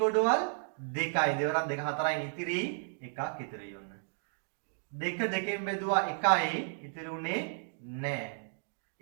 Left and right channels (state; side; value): silent; left; digital silence